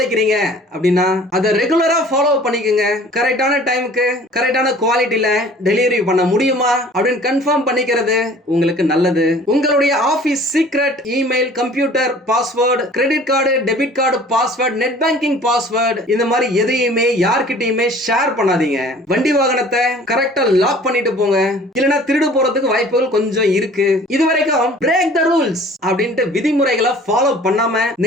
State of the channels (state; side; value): normal; both; correlation 0.49